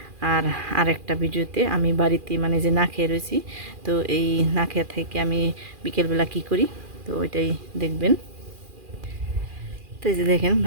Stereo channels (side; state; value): left; late; 2.4 ms